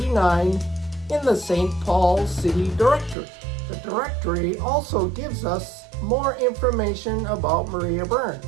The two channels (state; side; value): drops out; left; at 3.2 s